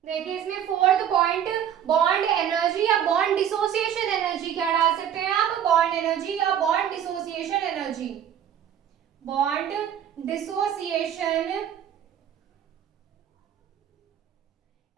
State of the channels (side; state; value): left; quieter; 9.7 dB